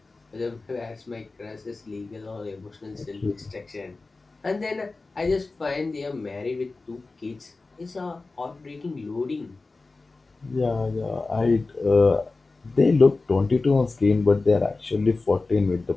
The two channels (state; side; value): quieter; right; 3.6 dB